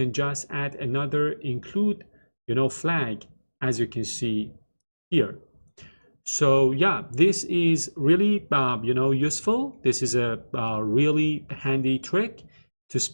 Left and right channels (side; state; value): both; inverted; correlation -1.00